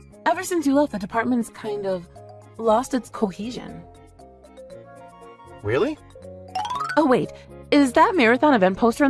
Ever since you left, the department's kind of lost its cohesion. Really? Oh wait, is that marathon event poster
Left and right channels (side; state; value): both; identical; correlation 1.00